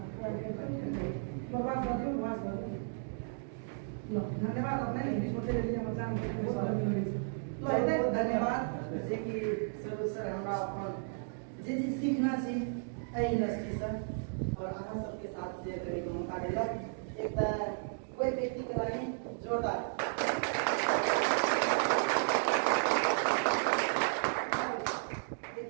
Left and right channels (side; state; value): left; silent; digital silence